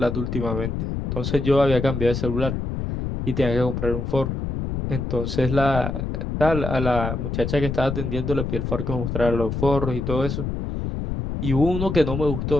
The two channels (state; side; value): noise; left; rumble, 3 dB below the sound